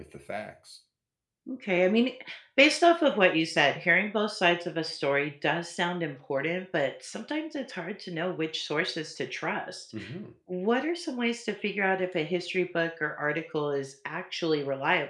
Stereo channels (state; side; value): identical; both; correlation 1.00